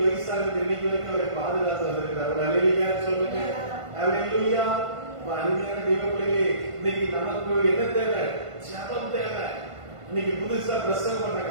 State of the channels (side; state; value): left; late; 1.5 ms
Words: வயசாகுது. இன்னைக்கு வரைக்கும் அவரை பாதுகாத்து வந்திருக்கிறார். ஒரு அல்லேலூயா சொல்லுங்க. அல்லேலூயா. அருமையான தெய்வ பிள்ளைகளே, இன்னைக்கு நமக்கு என்ன தேவை? ஜெபம் தேவை. இன்னைக்கு புதுசா பிரசங்கம்